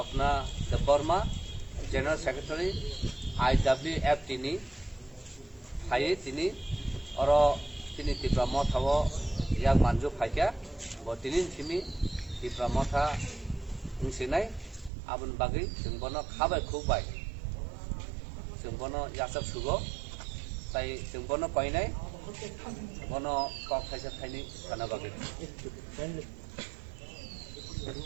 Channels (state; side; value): drops out; left; at 14.9 s